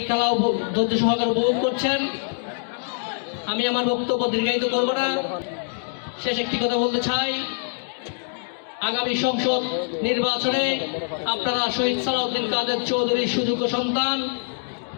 খেলা ধৈর্য সহকারে উপভোগ করছেন। আমি আমার বক্তব্য দীর্ঘায়িত করব না। শেষ একটি কথা বলতে চাই, আগামী সংসদ নির্বাচনে আপনারা শহীদ সালাউদ্দিন কাদের চৌধুরীর সুযোগ্য সন্তান,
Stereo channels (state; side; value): silent; right; digital silence